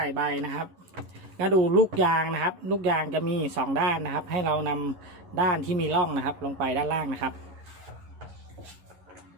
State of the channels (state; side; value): late; left; 11 ms